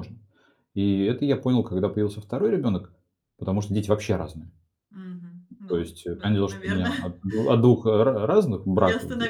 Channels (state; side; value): identical; both; correlation 1.00